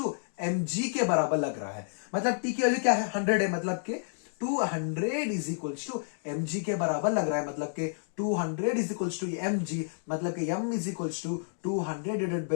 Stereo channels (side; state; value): right; silent; digital silence